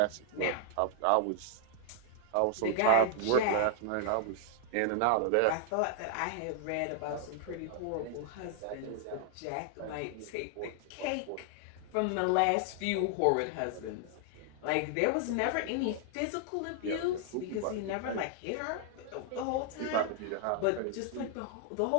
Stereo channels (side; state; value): both; different; correlation 0.00